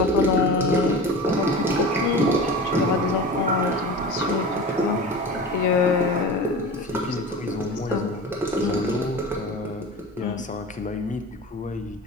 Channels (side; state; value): both; normal; correlation 0.33